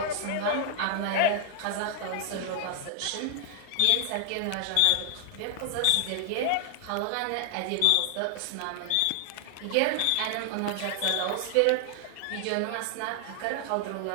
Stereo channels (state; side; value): different; both; correlation 0.00